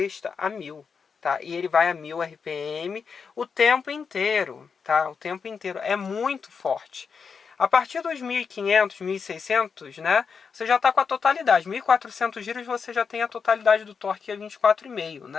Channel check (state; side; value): quieter; right; 5.9 dB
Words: a 1000, tá? E ele vai a 1000 RPM o tempo inteiro, tá? O tempo inteiro. É muito forte. A partir dos 1500, 1600, né? Você já está com a totalidade. 1400 giros você já tem a totalidade do torque, que é 24,5,